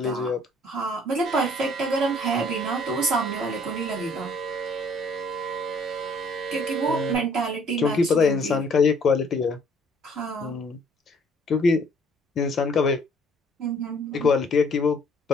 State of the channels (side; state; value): both; normal; correlation 0.59